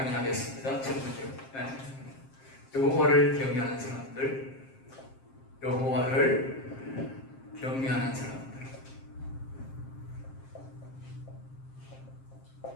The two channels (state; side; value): late; right; 7.5 ms